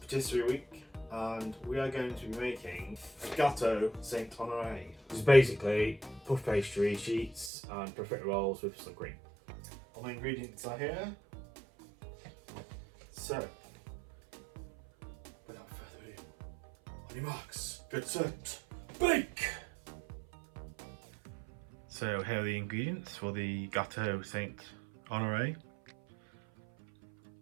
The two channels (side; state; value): left; drops out; at 7.5 s